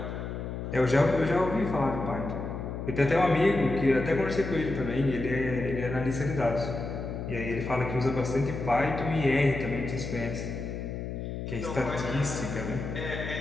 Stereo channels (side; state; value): left; noise; hum, 6 dB below the sound